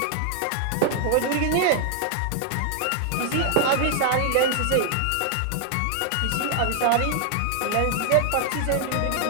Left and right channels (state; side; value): different; both; correlation 0.00